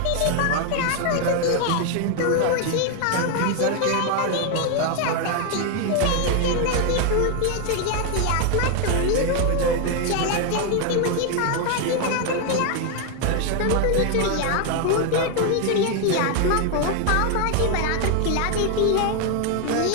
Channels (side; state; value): both; different; correlation 0.01